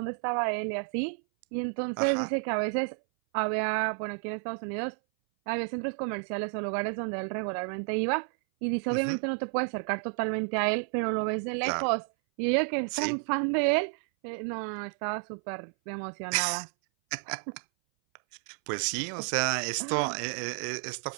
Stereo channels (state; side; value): silent; left; 57 dB below the other